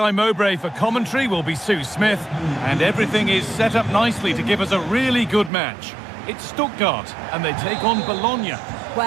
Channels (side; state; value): left; drops out; at 5.5 s